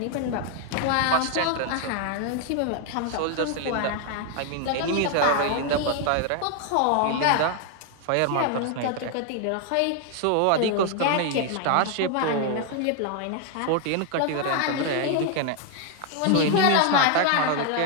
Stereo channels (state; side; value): different; both; correlation 0.00